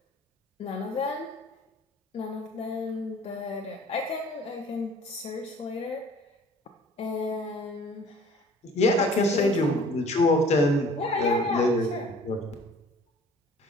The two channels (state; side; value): normal; both; correlation 0.51